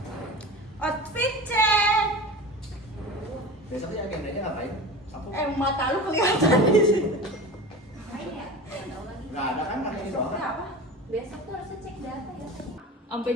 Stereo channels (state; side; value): normal; both; correlation 0.32